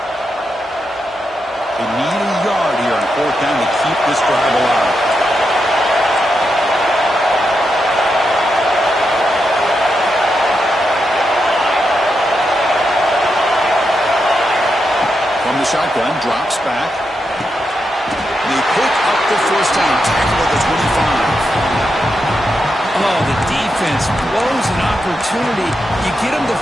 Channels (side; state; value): both; normal; correlation 0.85